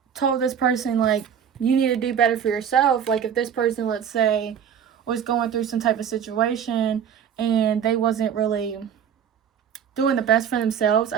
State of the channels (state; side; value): quieter; left; 8.2 dB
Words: told this person, like, you need to do better for yourself. Like, if this person, let's say, was going through some type of situation and they wasn't really doing the best for themselves,